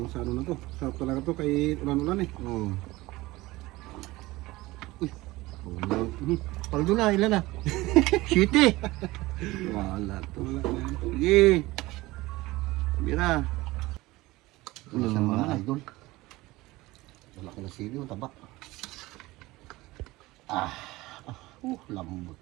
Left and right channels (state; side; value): quieter; left; 19.7 dB